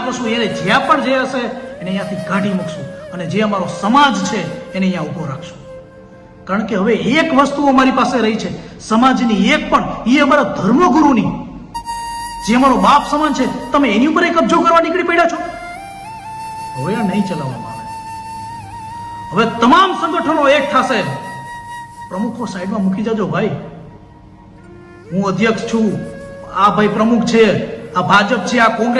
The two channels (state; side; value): identical; both; correlation 1.00